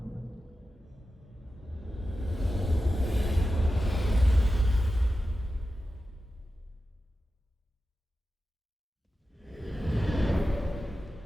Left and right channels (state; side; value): normal; both; correlation 0.93